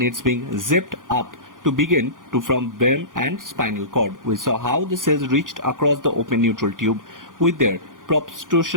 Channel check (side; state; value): left; late; 0.89 ms